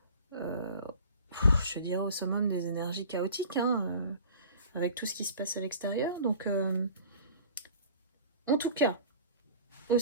je dirais, au summum des énergies chaotiques, avec tout ce qui se passe à l'extérieur. Donc, en tout cas, au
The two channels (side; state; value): both; inverted; correlation -0.44